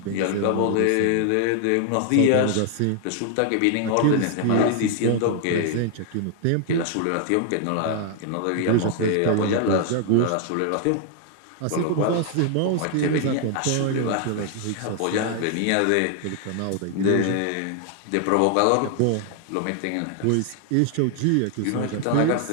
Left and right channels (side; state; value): both; different; correlation 0.00